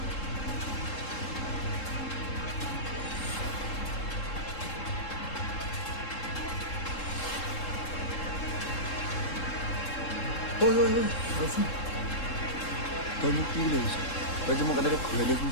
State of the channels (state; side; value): late; right; 3.7 ms